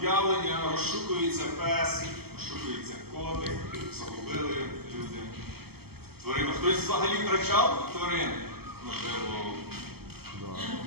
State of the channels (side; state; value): left; late; 0.96 ms